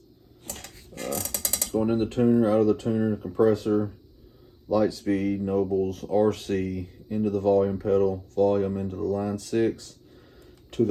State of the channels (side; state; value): both; identical; correlation 1.00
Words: It's going in the tuner, out of the tuner, compressor, lightspeed, Nobels, RC, into the volume pedal, volume into the line 6 to